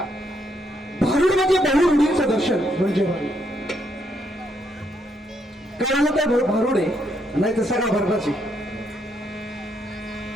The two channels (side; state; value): both; normal; correlation 0.75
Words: भारुड म्हणजे बहुरूढींचं दर्शन म्हणजे भारुड. कळालं काय भारुड आहे, नाही तर सगळा भरडाची.